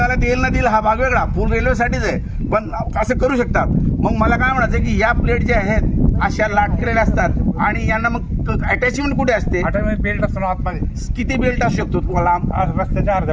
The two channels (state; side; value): identical; both; correlation 1.00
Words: देईल ना देईल हा भाग वेगळा, पूल रेल्वेसाठीच आहे. पण असं करू शकतात. मग मला काय म्हणायचं की या प्लेट ज्या आहेत अशा लाटलेल्या असतात आणि यांना मग अटॅचमेंट कुठे असते? बेल्ट असतो आतमध्ये. किती बेल्ट असू शकतो तुम्हाला? रस्त्याच्या